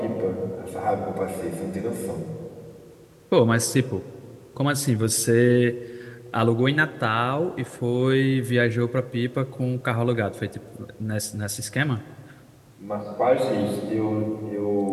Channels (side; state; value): both; identical; correlation 1.00